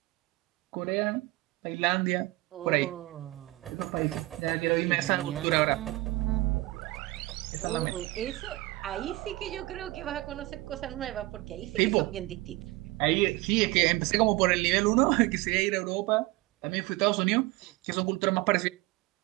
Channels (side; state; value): left; quieter; 20.5 dB